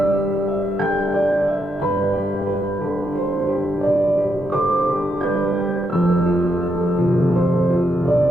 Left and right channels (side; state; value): both; normal; correlation 0.81